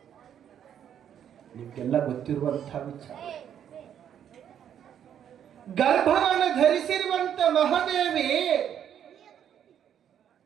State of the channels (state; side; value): quieter; left; 9.4 dB